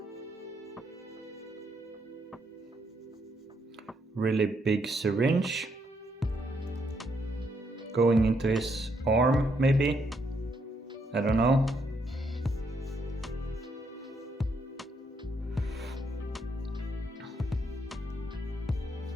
Really big syringe going into his arm, maybe? I don't know.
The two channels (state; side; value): normal; both; correlation 0.75